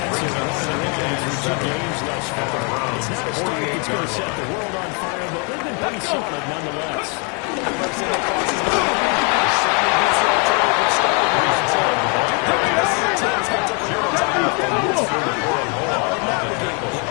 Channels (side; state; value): right; quieter; 35.6 dB